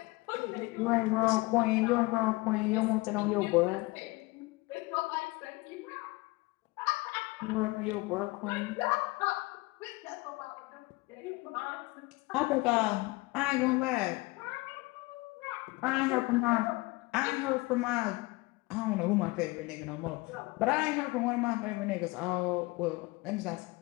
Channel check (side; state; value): right; quieter; 23.4 dB